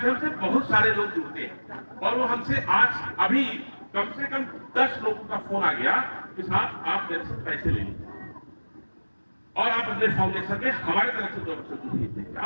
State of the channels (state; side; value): inverted; both; correlation -1.00